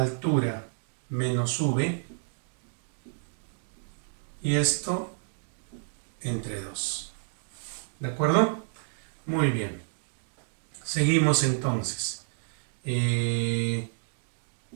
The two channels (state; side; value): silent; left; digital silence